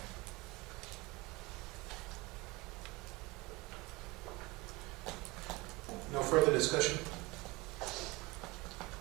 No further discussion?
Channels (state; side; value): quieter; left; 23.3 dB